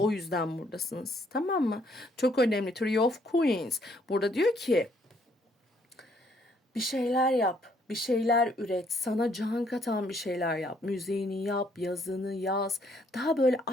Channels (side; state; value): both; normal; correlation 0.68